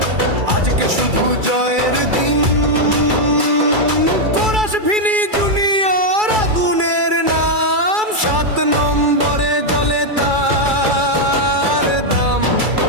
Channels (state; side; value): late; left; 2.3 ms